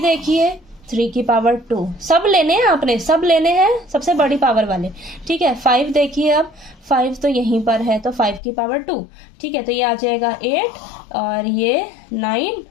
देखिए 3 की पावर 2, सब लेने हैं आपने, सब लेने हैं सबसे बड़ी पावर वाले, ठीक है। 5 देखिए, अब 5 तो यहीं पर है तो 5 की पावर 2, ठीक है। तो ये आ जाएगा 8 और ये 9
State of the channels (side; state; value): right; drops out; at 8.4 s